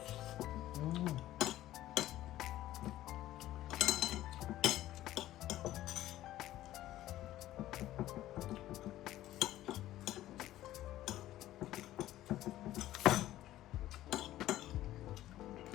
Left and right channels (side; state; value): right; quieter; 14.4 dB